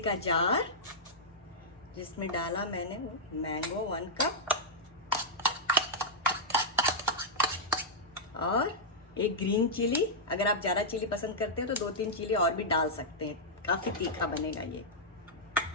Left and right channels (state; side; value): normal; both; correlation -0.07